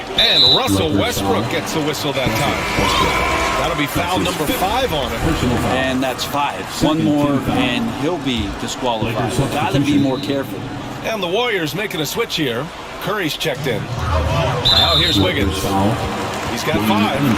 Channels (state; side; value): identical; both; correlation 1.00